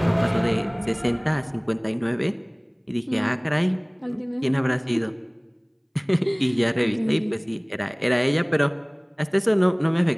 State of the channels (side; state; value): both; identical; correlation 1.00